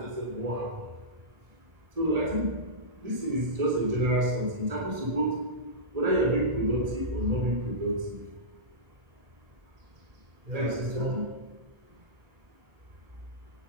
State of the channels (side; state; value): left; late; 1.7 ms